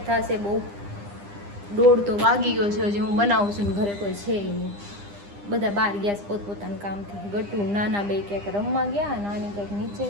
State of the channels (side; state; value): left; late; 9.9 ms